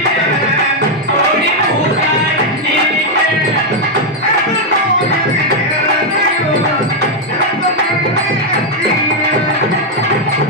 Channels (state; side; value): normal; both; correlation 0.00